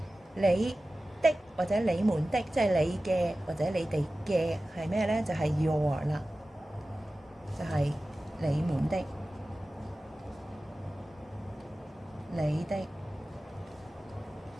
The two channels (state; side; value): normal; both; correlation 0.96